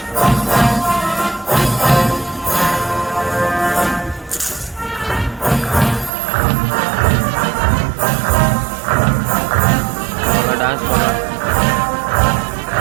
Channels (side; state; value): left; drops out; at 6.1 s